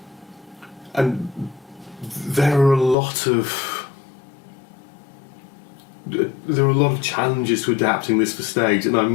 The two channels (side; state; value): right; drops out; at 3.0 s